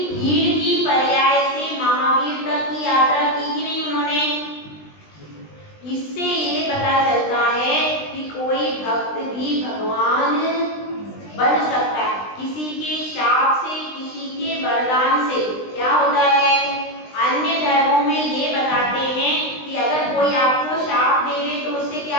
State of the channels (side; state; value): right; late; 20 ms